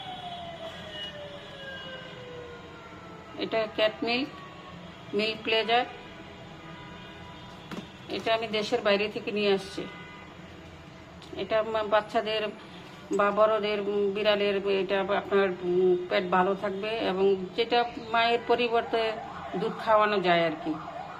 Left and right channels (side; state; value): both; identical; correlation 1.00